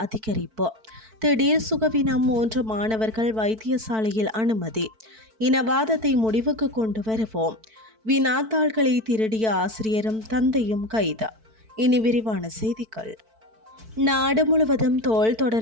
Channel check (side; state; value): left; late; 4.5 ms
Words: அதிகரிப்பு. திடீர் சுகவீனம் 3 மாணவர்கள் வைத்தியசாலையில் அனுமதி. இனவாதத்தை முடிவுக்கு கொண்டு வருவோம். வினாத்தாள்களை திருடிய ஆசிரியரும் தந்தையும் கைது. இனி விரிவான செய்திகள். நாடு முழுவதும் தோல்